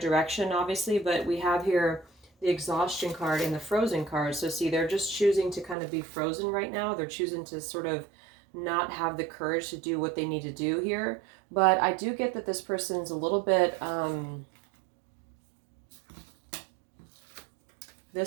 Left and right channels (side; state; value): left; drops out; at 5.8 s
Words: obviously, but we have here the exhaustion card and the frozen card. So see, they're just choosing to kind of be frozen right now. They're choosing to sort of not have the courage to do what they need to do here. But I do get that this person's a little bit...